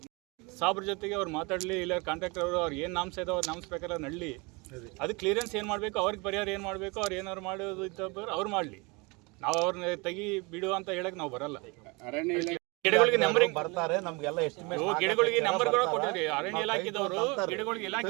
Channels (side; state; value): left; quieter; 27.8 dB